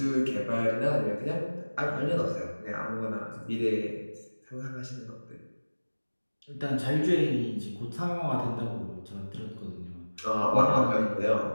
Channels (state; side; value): inverted; both; correlation -1.00